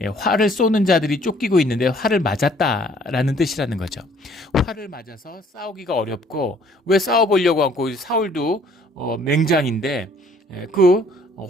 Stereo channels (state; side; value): normal; both; correlation 0.59